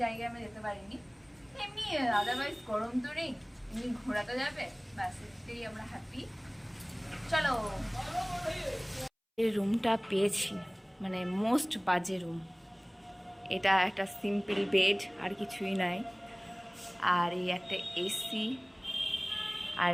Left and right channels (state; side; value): identical; both; correlation 1.00